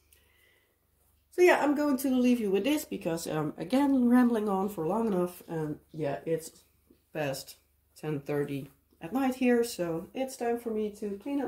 So yeah, I'm going to leave you with this because I'm again rambling on for long enough, and yeah, it's past 10:30 at night here, so it's time for me to clean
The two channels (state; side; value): identical; both; correlation 1.00